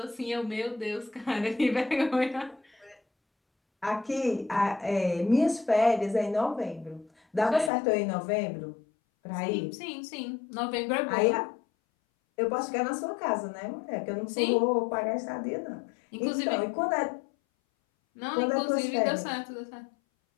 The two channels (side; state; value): right; drops out; at 7.7 s